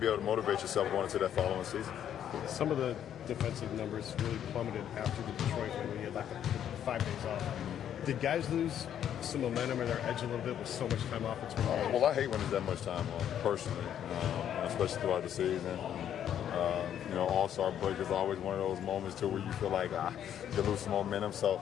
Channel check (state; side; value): quieter; right; 9.9 dB